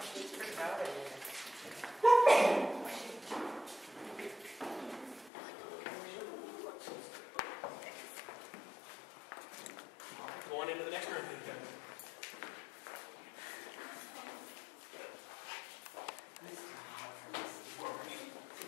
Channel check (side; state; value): right; drops out; at 5.3 s